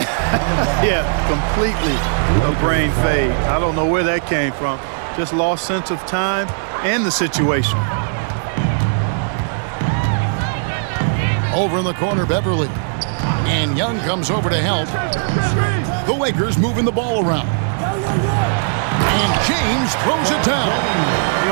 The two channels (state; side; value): silent; left; 64 dB below the other